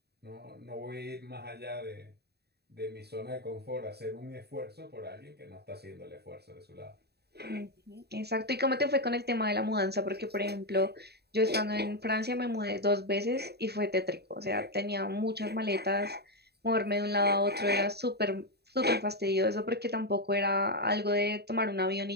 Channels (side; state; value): left; late; 0.47 ms